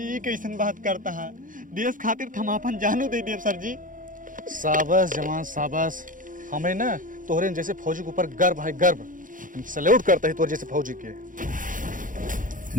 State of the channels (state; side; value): late; left; 0.39 ms